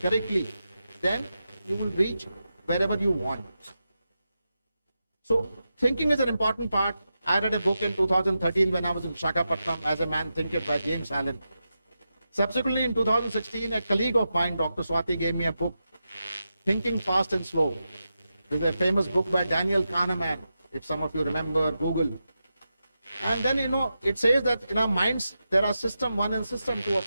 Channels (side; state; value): both; inverted; correlation -0.89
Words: then you will reach wherever you want. So thinking is an important part. I read a book in 2013 when I was in Visakhapatnam, As a Man Thinketh by James Allen. Subsequently, in 2016, a colleague of mine, Dr. Swati, gave me a book, Thinking Fast and Slow. It's a famous book by Daniel Kahneman, if some of you remember, Google. And then, it says that in our minds, there are system 1 and system 2 of